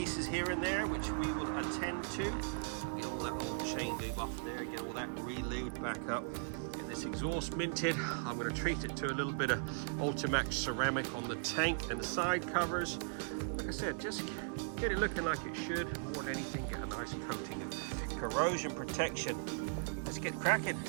here and there, which we will attend to. Get all that old chain lube off there, get all that re-lubed back up. Get this exhaust minted. I'm going to treat it to a little bit of Ultimax ceramic on the tank and the side covers. Like I said, just get it looking like it should. More than anything, get a nice coating of corrosion protection. Let's get cracking.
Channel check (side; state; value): left; silent; digital silence